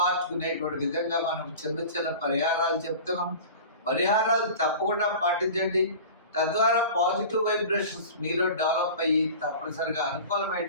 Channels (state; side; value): inverted; both; correlation -0.37